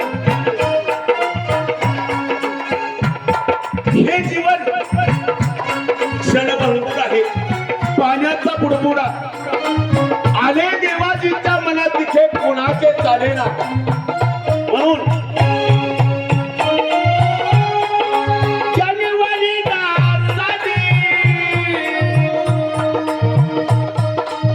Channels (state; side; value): identical; both; correlation 1.00